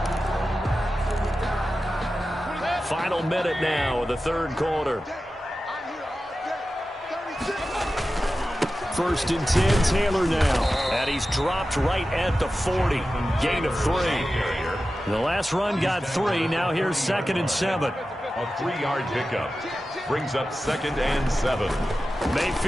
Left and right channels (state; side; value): normal; both; correlation 0.93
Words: Final minute now of the 3rd quarter. 1st and 10, Taylor now. And he's dropped right at the 40. Gain of 3. The last run got 3. Now here's 2nd and 7. A 3-yard pickup. Brings up 2nd and 7.